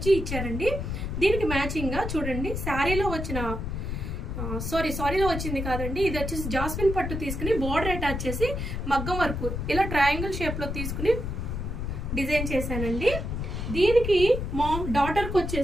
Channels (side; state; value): left; noise; rumble, 4 dB below the sound